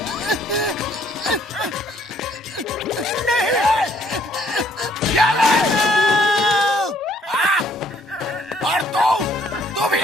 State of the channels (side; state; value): both; normal; correlation 0.64